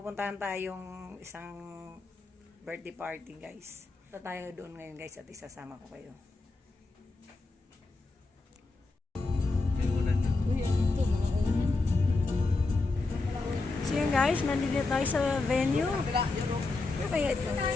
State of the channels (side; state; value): right; quieter; 3.5 dB